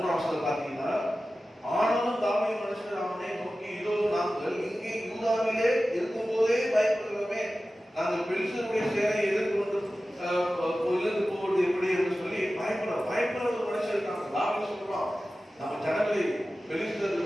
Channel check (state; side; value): normal; both; correlation 0.95